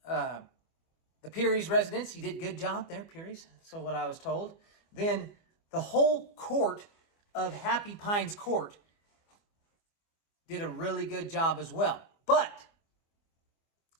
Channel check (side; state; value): right; late; 24 ms